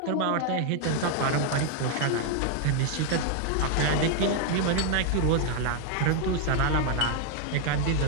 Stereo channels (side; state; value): both; different; correlation 0.00